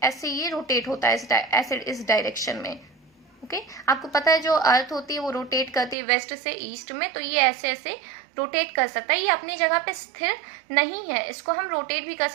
ऐसे ये रोटेट होता है ऐसे इस डायरेक्शन में। ओके। आपको पता है जो अर्थ होती है वो रोटेट करती है वेस्ट से ईस्ट में, तो ये ऐसे ऐसे रोटेट कर सकता है। ये अपनी जगह पे स्थिर नहीं है, इसको हम रोटेट भी कर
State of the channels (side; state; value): left; drops out; at 6.0 s